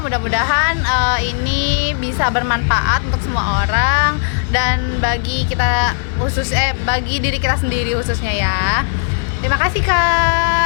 Mudah-mudahan ini bisa bermanfaat untuk semua orang dan bagi bagi diri kita sendiri khususnya ya. Terima kasih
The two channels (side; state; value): right; silent; digital silence